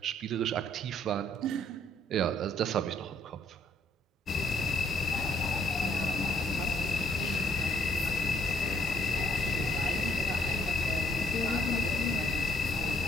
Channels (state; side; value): normal; both; correlation 0.66